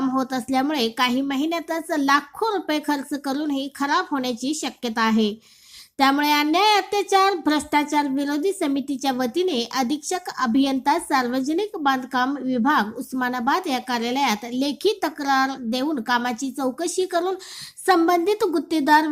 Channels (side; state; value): both; identical; correlation 1.00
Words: होत असल्यामुळे काही महिन्यातच लाखो रुपये खर्च करूनही खराब होण्याची शक्यता आहे. त्यामुळे अन्याय, अत्याचार, भ्रष्टाचार विरोधी समितीच्या वतीने अधीक्षक अभियंता सार्वजनिक बांधकाम विभाग उस्मानाबाद या कार्यालयात लेखी तक्रार देऊन कामाची चौकशी करून संबंधित गुत्तेदार